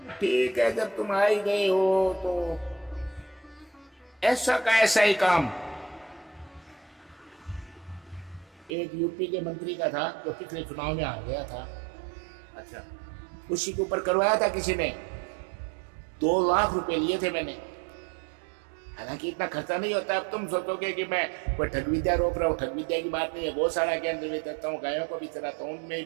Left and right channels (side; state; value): left; drops out; at 8.7 s